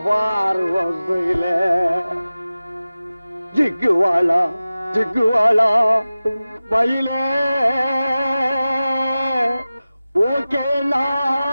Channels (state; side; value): inverted; both; correlation -0.96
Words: பார்வையில. ஜிக்குவாலா ஜிக்குவாலா மயிலே ஓகே நாடி